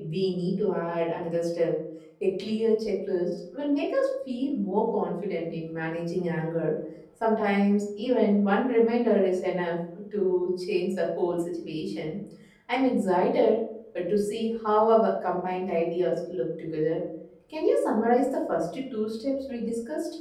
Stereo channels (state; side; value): identical; both; correlation 1.00